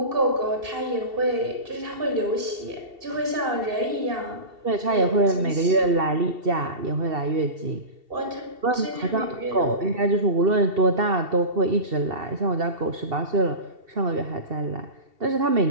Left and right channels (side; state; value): left; late; 2.7 ms